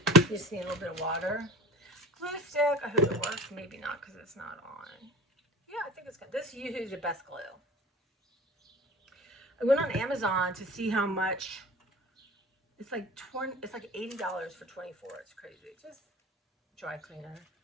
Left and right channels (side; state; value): both; normal; correlation 0.39